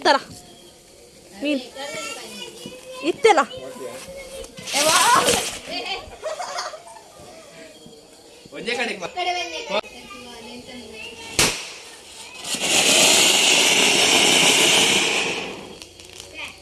ಮೀನ್ ಇತ್ತೆಲ್ಲ ಒಂಜೆ ಕಡೆಗೆ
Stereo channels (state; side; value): identical; both; correlation 1.00